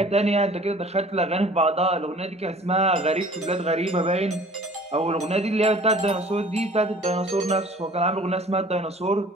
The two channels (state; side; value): normal; both; correlation 0.49